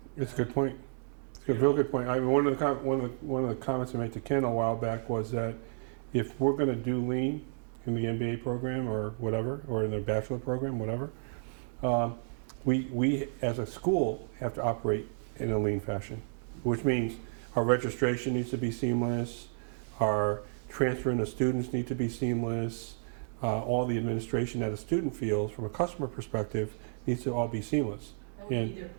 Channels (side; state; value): left; silent; digital silence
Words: It's a good point. It's a real good point. I mean, one of the comments I made to Ken a while back was that if we're going to do lean in the MBA program or whatever, or in the bachelor program, whatever, we as a school have to operate in a lean fashion, which means our registration needs to be seamless, our transferring of students need to be seamless, all the administration that a student feels from a customer perspective needs to all be seamless. That would be their